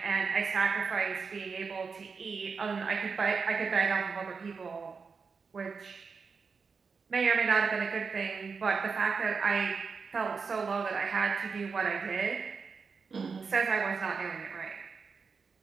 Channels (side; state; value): left; quieter; 5.2 dB